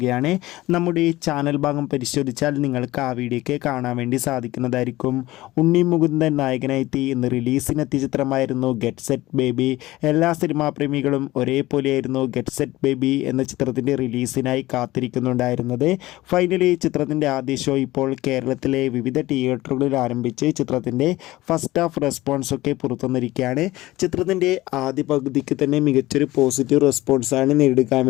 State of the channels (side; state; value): right; quieter; 17.8 dB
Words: നമ്മുടെ ഈ ചാനൽ ഭാഗം പരിശോധിച്ചാൽ നിങ്ങൾക്ക് ആ വീഡിയോയ്ക്ക് കാണാൻ വേണ്ടി സാധിക്കുന്നതായിരിക്കും. ഉണ്ണി മുകുന്ദൻ നായകനായി ഇന്ന് റിലീസിനെത്തിയ ചിത്രമായിരുന്നു ഗെറ്റ് സെറ്റ് ബേബി. എല്ലാ സിനിമാ പ്രേമികളും ഒരേപോലെയായിരുന്നു ഗെറ്റ് സെറ്റ് ബേബി എന്ന ചിത്രത്തിൻ്റെ റിലീസിനായി കാത്തിരിക്കുന്നുണ്ടായിരുന്നത്. ഫൈനലി ചിത്രത്തിൻ്റെ ആദ്യ ഷോ ഇപ്പോൾ കേരളത്തിലെ വിവിധ തിയേറ്ററുകളിൽ ആരംഭിച്ച് ചിത്രത്തിൻ്റെ ഫസ്റ്റ് ഹാഫ് റെസ്പോൺസൊക്കെ പുറത്തുവന്നിരിക്കുകയാണ്. ചിത്രത്തിൻ്റെ ആദ്യ പകുതിക്ക് തന്നെ മികച്ചൊരു പോസിറ്റീവ് റെസ്പോൺസാണ് നേടിയെടുക്കാൻ